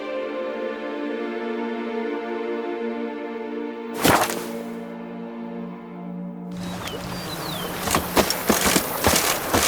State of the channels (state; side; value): identical; both; correlation 1.00